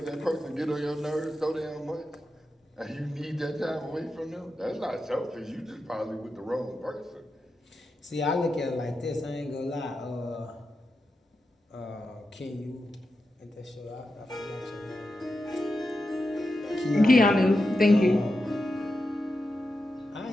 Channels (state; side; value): normal; both; correlation 0.89